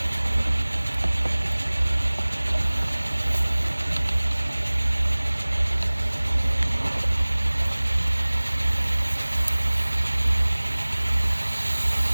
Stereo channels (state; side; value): inverted; both; correlation -1.00